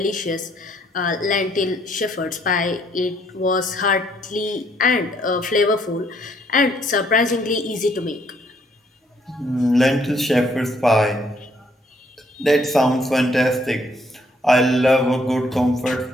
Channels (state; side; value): normal; both; correlation 0.68